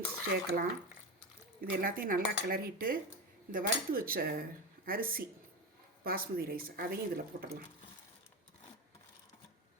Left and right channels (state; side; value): normal; both; correlation 0.18